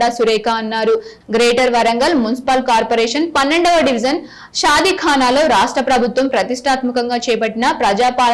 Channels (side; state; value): both; identical; correlation 1.00